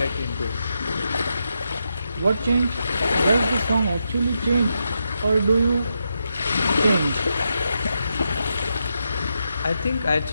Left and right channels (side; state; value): both; inverted; correlation -0.84